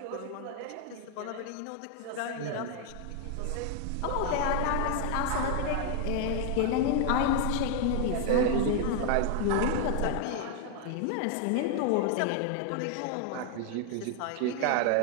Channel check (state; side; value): different; both; correlation 0.00